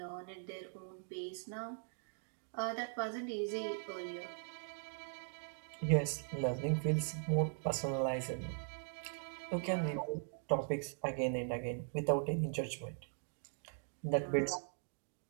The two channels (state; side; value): silent; left; digital silence